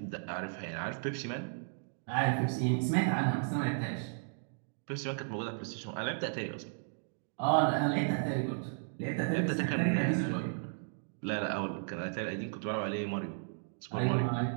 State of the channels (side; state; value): left; silent; digital silence